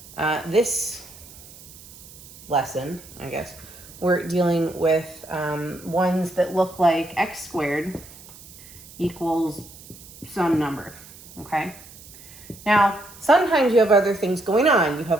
This lesson, I guess, we're dealing with ones that look like x squared equals some number, okay? Now, sometimes you have other things going on. You have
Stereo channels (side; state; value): right; noise; hiss, 19 dB below the sound